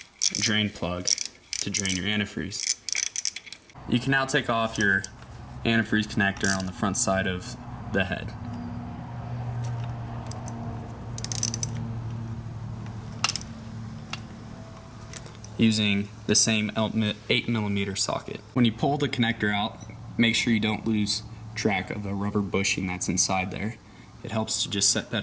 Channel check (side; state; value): both; identical; correlation 1.00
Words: drain plug to drain your antifreeze. You can now take off your antifreeze connector on the front side of the head. Using the same 8mm socket. When you pull the connector out, make sure you don't lose track of the rubber bushing that's inside there. It helps to just set